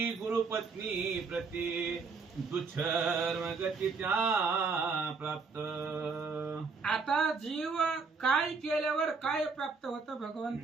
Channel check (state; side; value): quieter; left; 4.6 dB